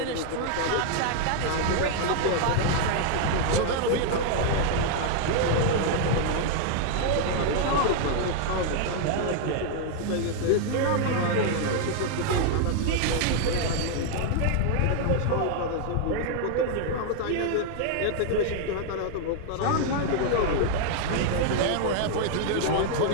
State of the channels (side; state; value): both; different; correlation 0.00